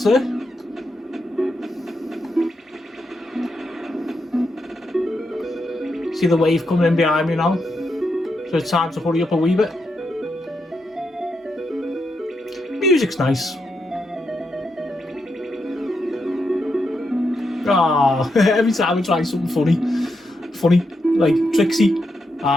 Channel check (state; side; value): normal; both; correlation 0.83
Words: there. See the wave coming in behind me now, so it's time to hurry up a wee bit. Music's nice. Ah, every time I try something funny, like Trixie,